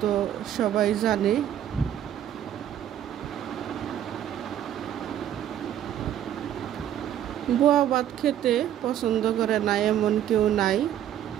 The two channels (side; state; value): left; quieter; 10.8 dB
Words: তো সবাই জানে। বোয়া ভাত খেতে পছন্দ করে না এমন কেউ নাই,